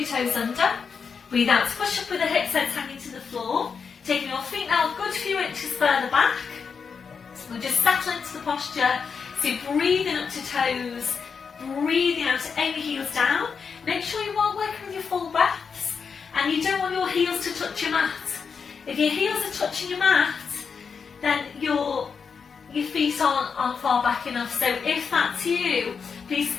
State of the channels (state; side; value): quieter; right; 5.9 dB